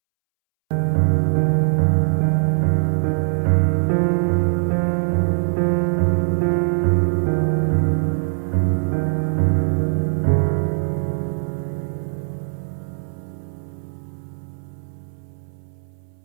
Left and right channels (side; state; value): left; silent; 65 dB below the other